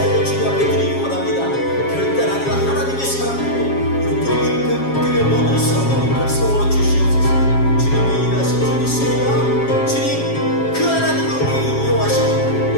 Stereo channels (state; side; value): late; right; 7.3 ms